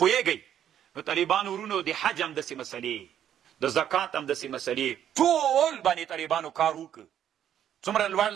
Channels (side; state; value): left; quieter; 10.1 dB